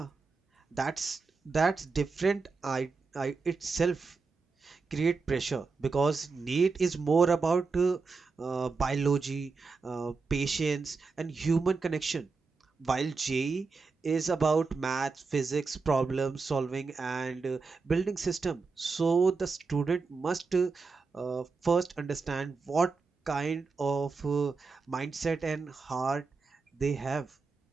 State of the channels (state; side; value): quieter; left; 4.5 dB